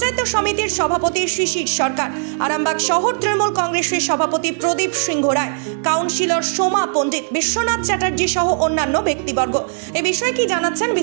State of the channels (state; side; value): silent; left; digital silence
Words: সমিতির সভাপতি শিশির সরকার, আরামবাগ শহর তৃণমূল কংগ্রেসের সভাপতি প্রদীপ সিংহ রায়, কাউন্সিলর সোমা পণ্ডিত, বিশ্বনাথ চ্যাটার্জি সহ অন্যান্য ব্যক্তিবর্গ। এ বিষয়ে কি জানাচ্ছেন